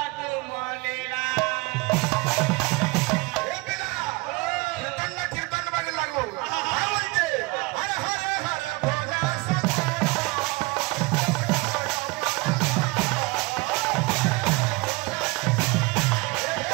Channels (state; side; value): quieter; left; 24.3 dB